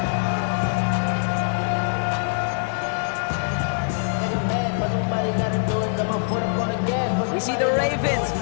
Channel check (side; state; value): right; silent; digital silence